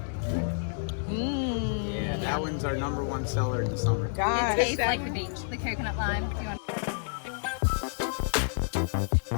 Yeah, that one's our #1 seller in the summer. God, It tastes like the beach, the coconut lime. Do you want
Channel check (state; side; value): silent; right; digital silence